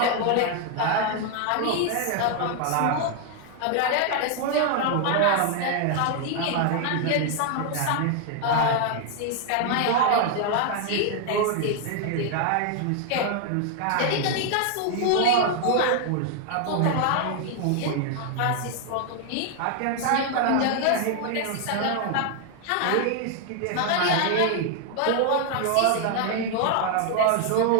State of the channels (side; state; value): both; different; correlation 0.00